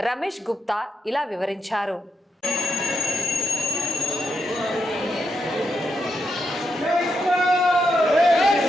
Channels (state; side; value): normal; both; correlation 0.83